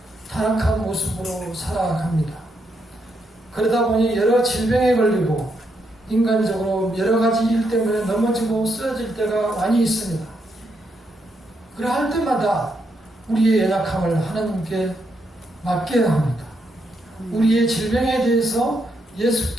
타락한 모습으로 살아갑니다. 그러다 보니 여러 질병에 걸리고 인간적으로 여러 가지 일 때문에 넘어지고 쓰러질 때가 많이 있습니다. 그러할 때마다 우리의 연약함을 하나님께 맡겨야 합니다. 우리의 질병에 대해서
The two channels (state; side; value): normal; both; correlation 0.79